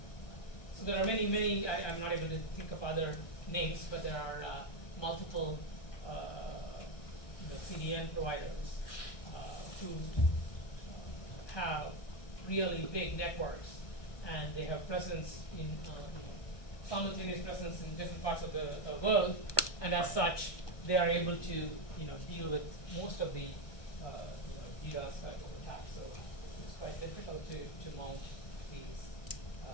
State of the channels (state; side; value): late; right; 1.2 ms